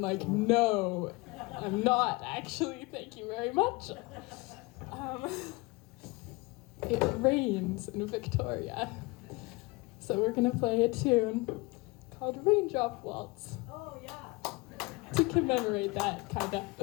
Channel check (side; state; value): right; quieter; 25.0 dB